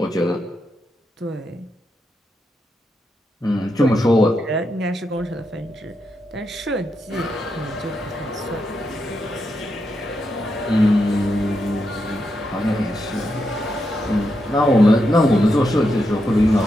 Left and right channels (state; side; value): normal; both; correlation 0.84